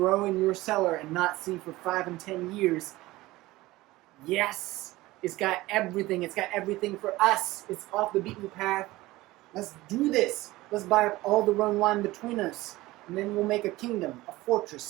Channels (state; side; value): quieter; left; 18.7 dB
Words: in your cellar and not see for 5 and 10 years. Yes, it's got everything. It's got everything for us. It's off the beaten path. Let's do this. Let's buy up all the Rhone wine between us. And then we'll make a kingdom, a